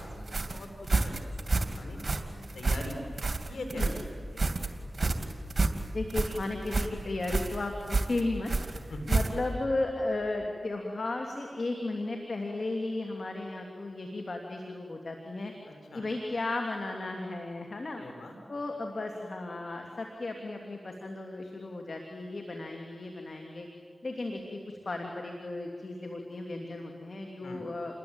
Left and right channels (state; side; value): normal; both; correlation 0.94